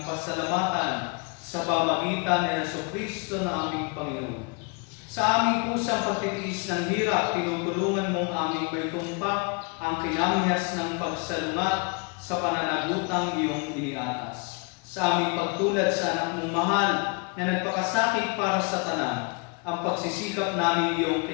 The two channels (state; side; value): quieter; right; 32.8 dB